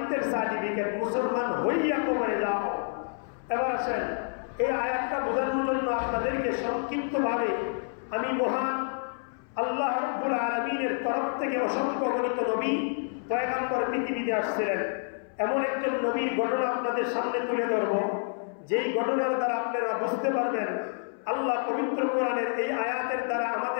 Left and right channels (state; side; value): silent; right; 59 dB below the other